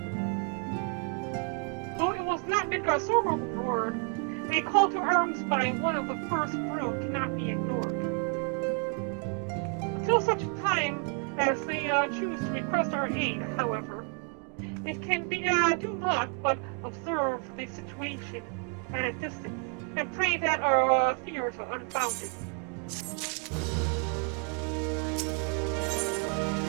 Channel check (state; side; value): quieter; left; 38.4 dB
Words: Though it was not Midgard Sormer's word, a call to arms by one of the first brood cannot be ignored. Until such a time as they choose to request our aid, however. It can be do not but observe the situation at a distance and pray that our fears are unfounded.